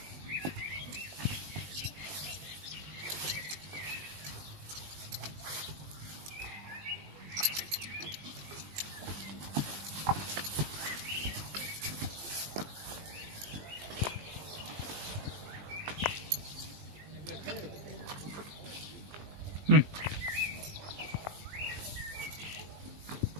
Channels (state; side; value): late; left; 20 ms